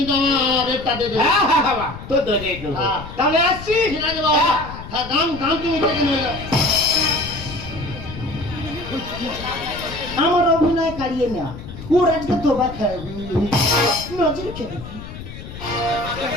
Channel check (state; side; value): noise; left; rumble, 12 dB below the sound